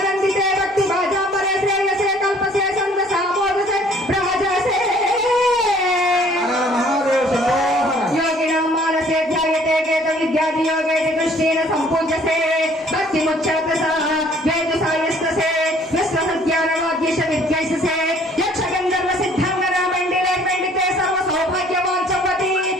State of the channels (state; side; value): normal; both; correlation 0.57